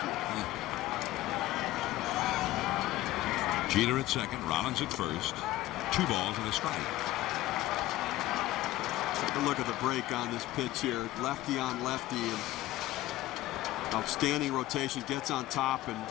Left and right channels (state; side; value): quieter; right; 16.1 dB